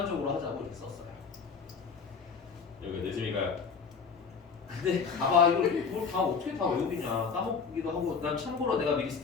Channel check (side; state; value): right; quieter; 5.7 dB